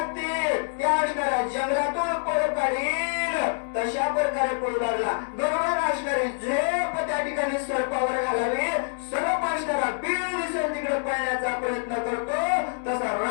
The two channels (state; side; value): silent; right; digital silence